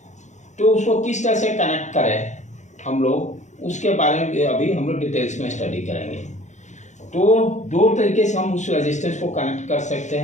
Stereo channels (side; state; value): right; late; 0.34 ms